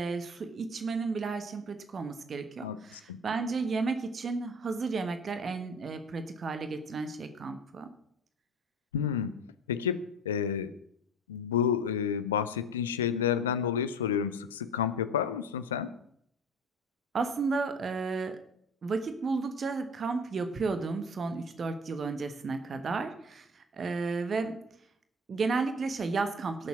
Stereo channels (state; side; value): normal; both; correlation 0.37